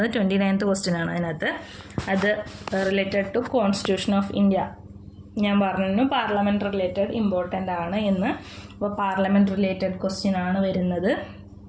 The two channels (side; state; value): both; identical; correlation 1.00